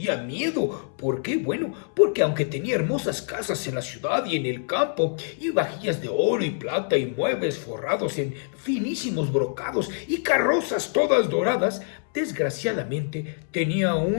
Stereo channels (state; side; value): silent; right; 61 dB below the other